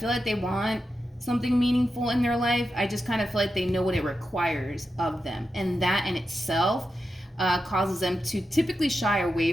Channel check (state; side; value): normal; both; correlation 0.89